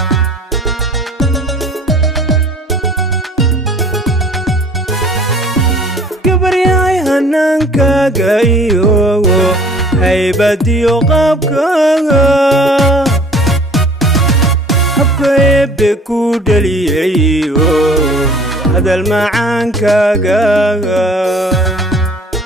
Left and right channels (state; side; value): normal; both; correlation 0.51